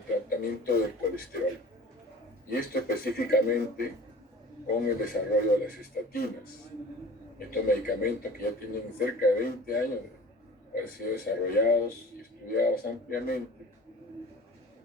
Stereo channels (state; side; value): normal; both; correlation 0.42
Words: tratamiento del colesterol. Y esto específicamente con el desarrollo de las estatinas. Estos medicamentos que ya tienen cerca de 20 años de haber sido desarrollados y estudiados ampliamente